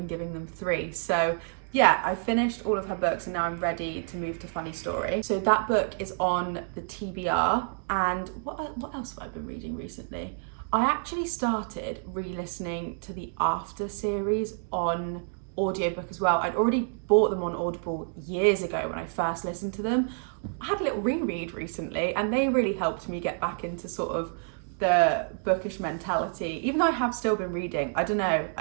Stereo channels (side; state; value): left; silent; 59 dB below the other